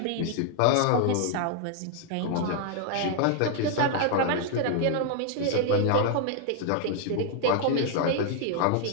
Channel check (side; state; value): both; different; correlation 0.00